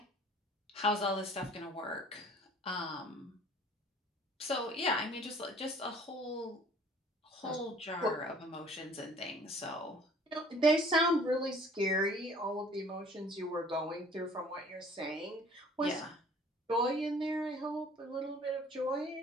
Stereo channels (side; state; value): both; normal; correlation 0.52